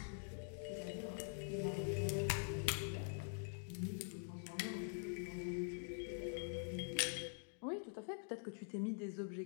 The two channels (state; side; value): silent; right; digital silence